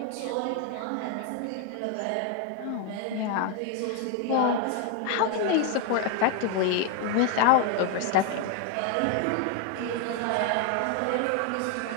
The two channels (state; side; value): different; both; correlation 0.01